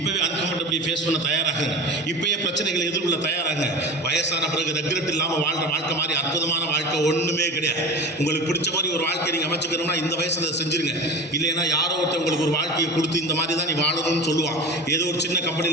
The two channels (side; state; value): both; normal; correlation 0.31